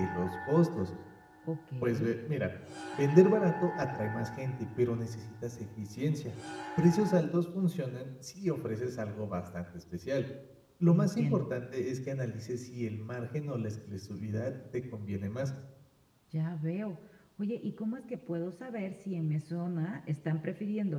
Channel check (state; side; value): identical; both; correlation 1.00